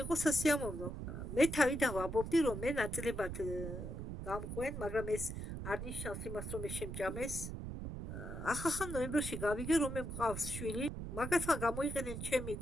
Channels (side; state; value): right; noise; rumble, 6 dB below the sound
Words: იყო სასიამოვნო. მე თავიდან ვამბობდი, რომ მე ნაწილებად გამყვენ, მაგრამ ეს არ ნიშნავს იმას, რომ ეს შემჭამეს. ახლა ნოემბერში გავიგე, რომ მე მყავს შვილი. მაგათმა გამოიყენენ ჩემი